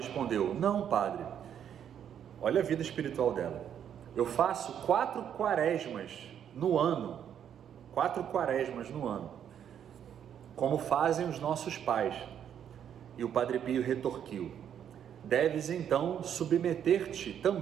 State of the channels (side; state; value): left; quieter; 9.1 dB